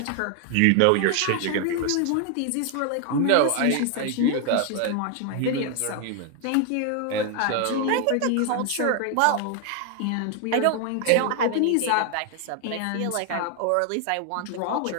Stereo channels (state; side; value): different; both; correlation 0.00